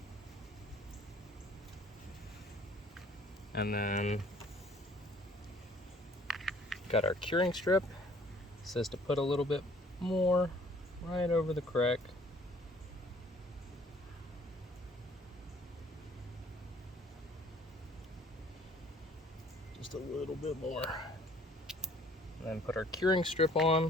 And then got our curing strip. It says to put a little bit more right over the crack. Just a little bit more. And then put our curing strip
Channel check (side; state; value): both; normal; correlation 0.56